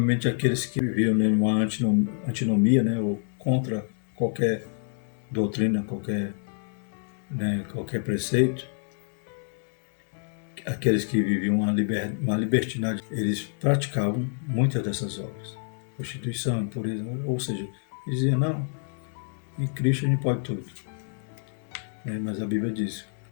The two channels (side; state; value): right; silent; digital silence